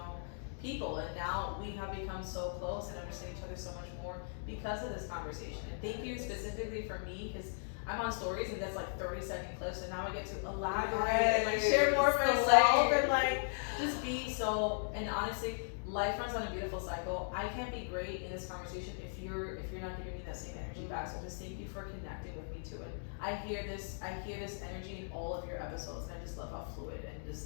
people, and now we have become so close and understand each other so much more because of this conversation. And thank you specifically for me, because I'm on stories and that's like 30-second clips, and now I get to elaborate and like share more of myself and like just be so. And honestly, life runs on a beautiful cycle. I can't be great in this conversation if you're not giving me that same energy back. So just thank you for connecting with me to it. I hear this energy in all of your episodes, and I just love how fluid and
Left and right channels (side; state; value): right; silent; digital silence